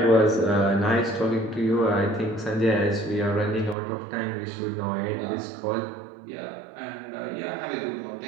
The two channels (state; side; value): drops out; left; at 3.8 s